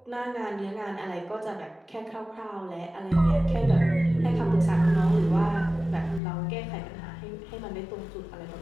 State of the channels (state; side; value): drops out; right; at 6.2 s